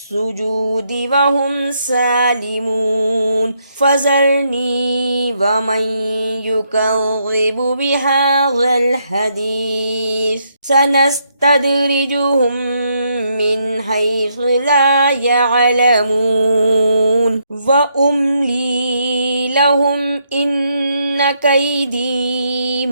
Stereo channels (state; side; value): inverted; both; correlation -0.76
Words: وهم سالمون فذرني ومن يكذب بهذا الحديث سنستدرجهم من حيث لا يعلمون وأملي لهم إن كيدي